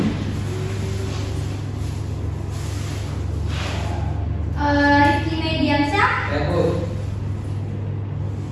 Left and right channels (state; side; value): identical; both; correlation 1.00